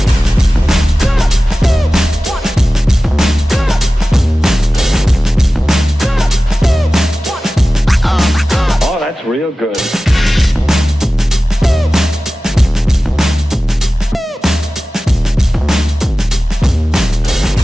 Oh, that's real good.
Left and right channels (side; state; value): both; normal; correlation 0.96